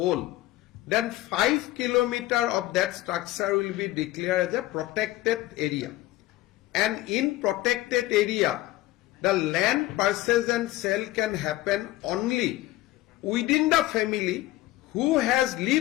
then 5 kilometers of that structure will be declared as a protected area. And in protected area, the land purchase and sale can happen only within the family who has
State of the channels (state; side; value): quieter; right; 16.7 dB